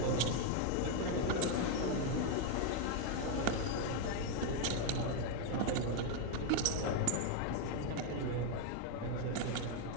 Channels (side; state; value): both; different; correlation 0.01